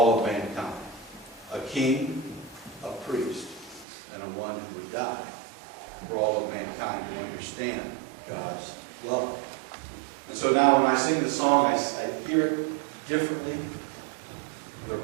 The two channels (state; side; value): drops out; left; at 3.9 s